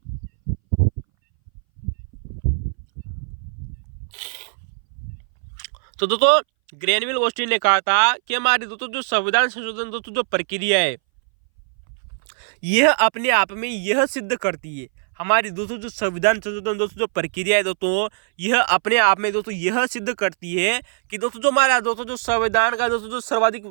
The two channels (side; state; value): left; silent; 62 dB below the other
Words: तो दोस्तों ग्रेनविल ऑस्टिन ने कहा था कि हमारी दोस्तों जो संविधान संशोधन दोस्तों जो प्रक्रिया है यह अपने आप में यह सिद्ध करती है, हमारी दोस्तों जो संविधान संशोधन दोस्तों जो प्रक्रिया है दोस्तों यह अपने आप में दोस्तों यह सिद्ध करती है कि दोस्तों जो हमारा दोस्तों जो संविधान का दोस्तों जो सर्वाधिक